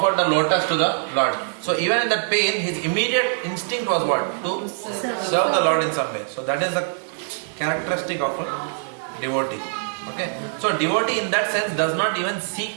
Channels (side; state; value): left; silent; 63 dB below the other